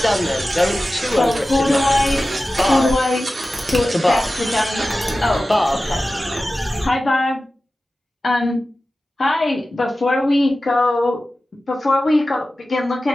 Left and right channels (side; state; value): both; normal; correlation 0.95